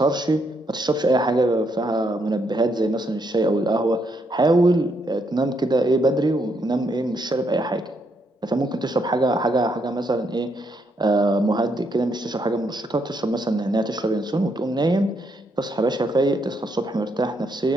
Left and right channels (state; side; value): normal; both; correlation 0.76